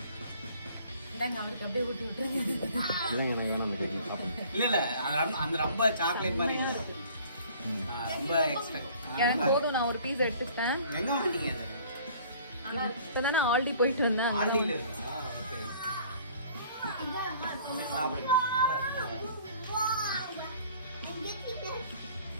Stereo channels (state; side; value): inverted; both; correlation -0.53